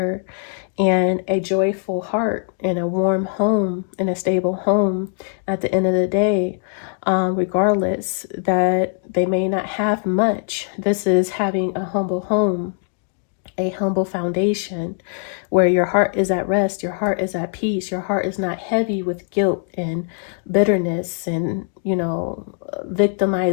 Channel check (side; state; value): right; silent; 62 dB below the other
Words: and a joyful heart, and a warm home, and a stable home at the end of the day. Regardless that they may not have much, this is having a humble home, a humble foundation, where your heart is at rest, your heart is at peace, your heart is not heavy with guilt and bitterness and, you know,